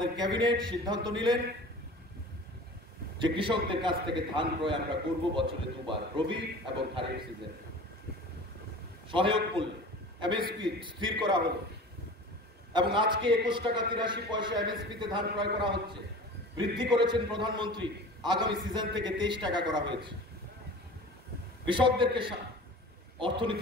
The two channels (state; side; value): normal; both; correlation 0.39